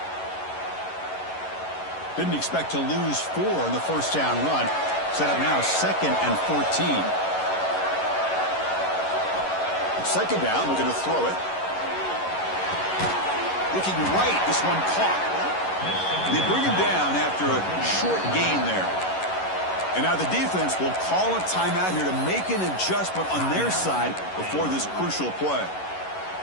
Didn't expect to lose 4 in the first down run. Set up now 2nd and 14. 2nd down, we're going to throw it. Looking right, this one caught. They bring him down after a short gain there. And now the defense will call a timeout here to make an adjustment on their side before this crucial play.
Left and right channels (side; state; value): right; late; 11 ms